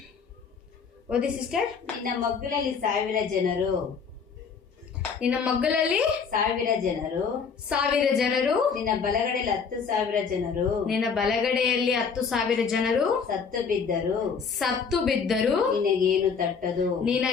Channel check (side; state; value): right; quieter; 5.9 dB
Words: ಓದಿ ಸಿಸ್ಟರ್. ನಿನ್ನ ಮಗ್ಗಲಲ್ಲಿ 1,000 ಜನರು, ನಿನ್ನ ಮಗ್ಗಲಲ್ಲಿ 1,000 ಜನರು, ನಿನ್ನ ಬಲಗಡೆಯಲ್ಲಿ 10,000 ಜನರು, ನಿನ್ನ ಬಲಗಡೆಯಲ್ಲಿ 10,000 ಜನರು ಸತ್ತು ಬಿದ್ದರು ನಿನಗೇನು ತಟ್ಟದು.